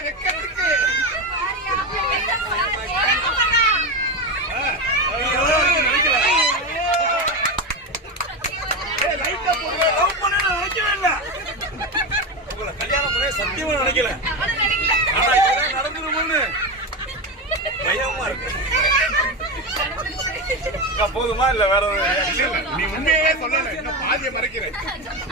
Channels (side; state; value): both; normal; correlation 0.17